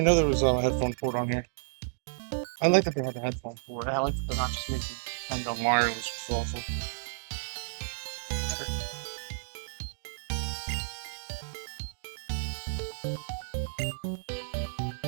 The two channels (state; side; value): silent; left; digital silence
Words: know there was a headphone port on here. I like that they had a headphone port. I like that they're not just making And the wireless was awesome.